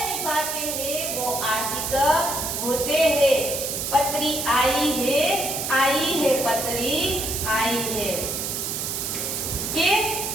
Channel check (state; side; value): noise; right; hiss, 2 dB below the sound